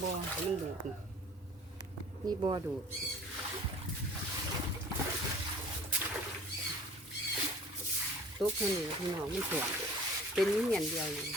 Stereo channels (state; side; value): normal; both; correlation 0.48